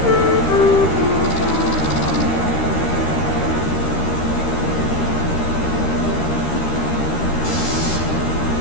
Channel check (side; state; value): right; late; 13 ms